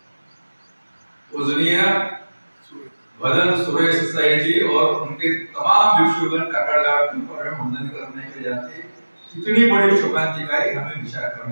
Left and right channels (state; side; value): inverted; both; correlation -1.00